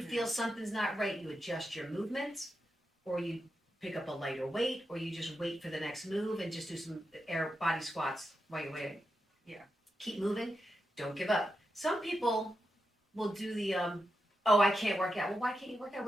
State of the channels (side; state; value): both; normal; correlation 0.87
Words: feel something's not right, you adjust your movements or you pick up a lighter weight, or you just wait for the next move and just do some air body squats while you're waiting. Yeah. Keep moving. Don't give up. Some people will do the oh, I can't work out. Well, why can't you work out?